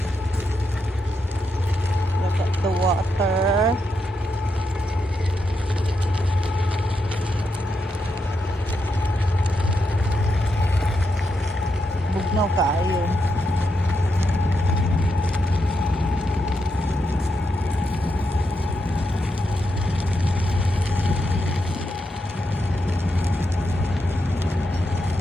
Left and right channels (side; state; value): both; normal; correlation 0.83